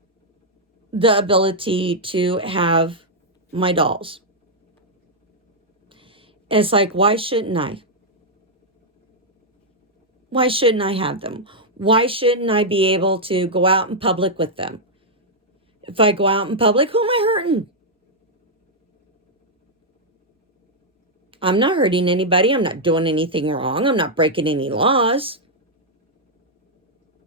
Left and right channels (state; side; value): normal; both; correlation -0.04